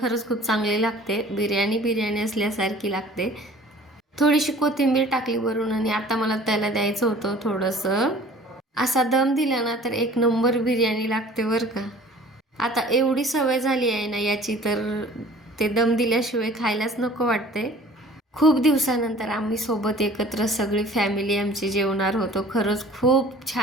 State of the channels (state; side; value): normal; both; correlation 0.48